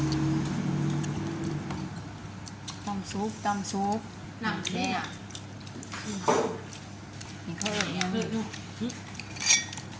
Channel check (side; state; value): both; identical; correlation 1.00